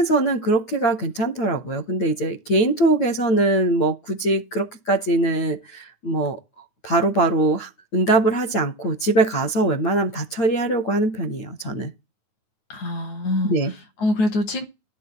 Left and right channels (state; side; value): late; right; 9.3 ms